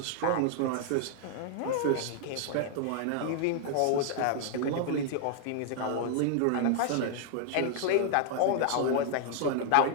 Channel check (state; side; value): different; both; correlation 0.00